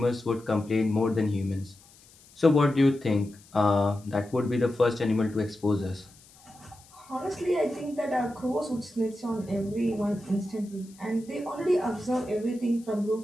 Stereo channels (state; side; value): noise; left; hiss, 26 dB below the sound